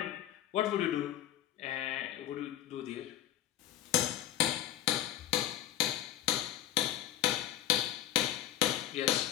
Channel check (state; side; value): quieter; right; 12.7 dB